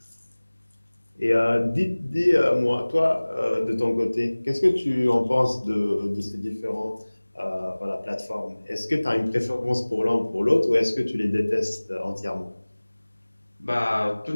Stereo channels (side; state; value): both; inverted; correlation -1.00